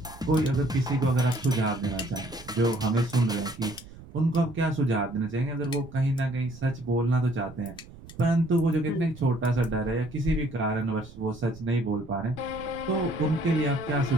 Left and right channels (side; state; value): right; noise; rumble, 18 dB below the sound